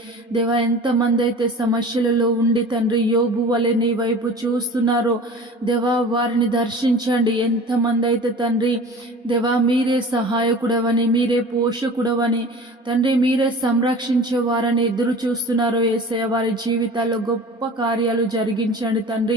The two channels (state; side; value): normal; both; correlation 0.40